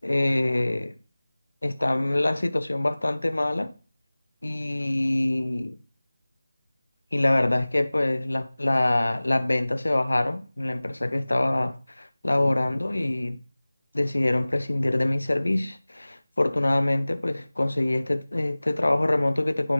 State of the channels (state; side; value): inverted; both; correlation -0.99